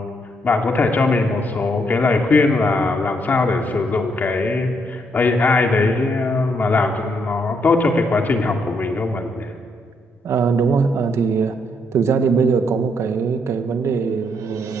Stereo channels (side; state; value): both; normal; correlation 0.74